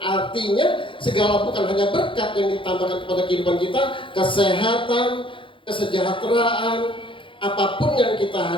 segala bukan hanya berkat yang ditambahkan kepada kehidupan kita, kesehatan, kesejahteraan, apapun yang kita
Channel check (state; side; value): late; right; 0.25 ms